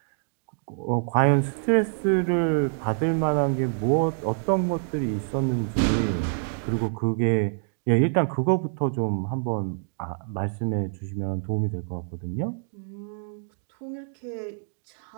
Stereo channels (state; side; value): silent; left; digital silence